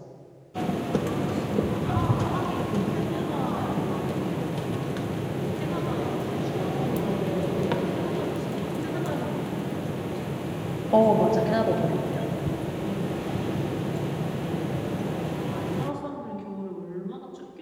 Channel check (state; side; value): identical; both; correlation 1.00